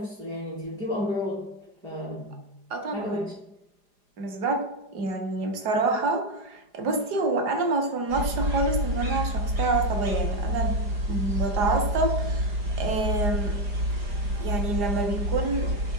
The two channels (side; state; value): left; late; 4.9 ms